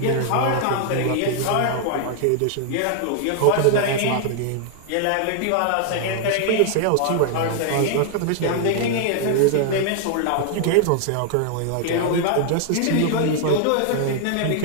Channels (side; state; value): both; different; correlation 0.00